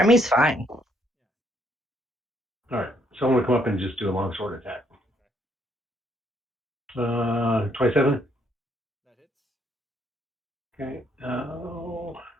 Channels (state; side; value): normal; both; correlation 0.70